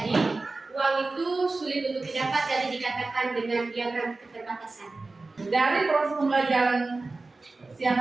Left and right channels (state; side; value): quieter; left; 3.5 dB